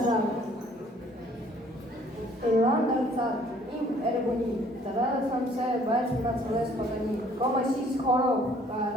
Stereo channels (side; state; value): both; normal; correlation 0.59